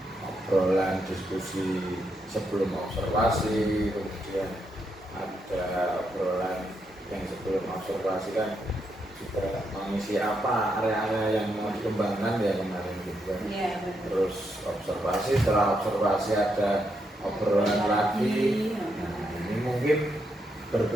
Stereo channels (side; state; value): both; normal; correlation 0.80